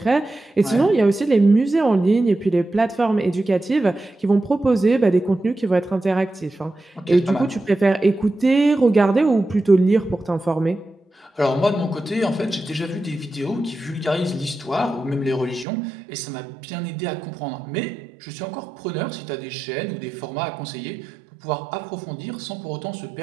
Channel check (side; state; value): left; drops out; at 15.7 s